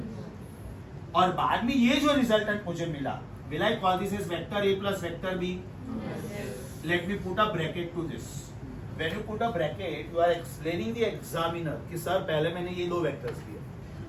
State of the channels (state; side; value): identical; both; correlation 1.00